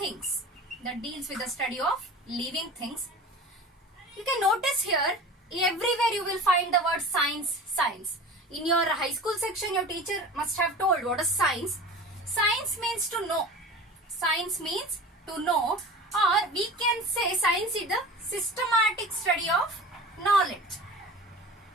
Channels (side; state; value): both; normal; correlation 0.37